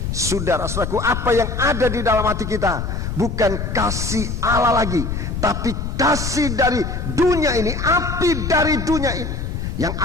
Saudara-saudaraku, apa yang ada di dalam hati kita bukan kasih Allah lagi, tapi kasih dari dunia ini, api dari dunia ini yang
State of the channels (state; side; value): noise; left; rumble, 4 dB below the sound